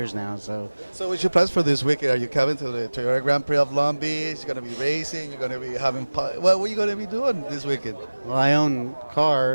now. So what's your plans for this weekend? Are you coming to the Toyota Grand Prix of Long Beach? You're going to be racing? You're going to be having what are you going to be doing this weekend? Well, I own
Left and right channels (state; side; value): inverted; both; correlation -1.00